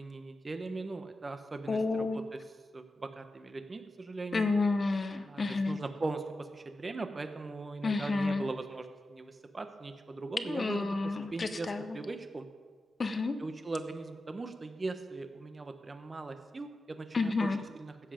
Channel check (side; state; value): both; normal; correlation 0.91